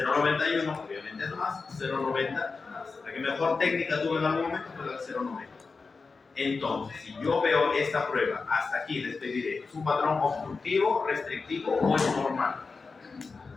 obviamente es más. 0,90 más. La que mejor técnica tuve en algún momento fue la 0,90. Entonces, si yo veo esta prueba, hasta aquí les pediré, ¿es un patrón obstructivo, restrictivo o es normal?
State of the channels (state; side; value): quieter; right; 4.4 dB